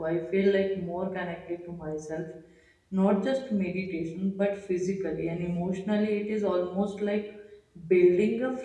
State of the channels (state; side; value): identical; both; correlation 1.00